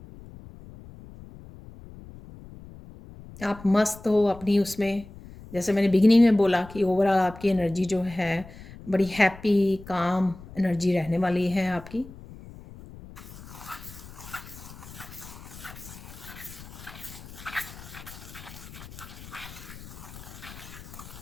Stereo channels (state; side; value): noise; left; rumble, 16 dB below the sound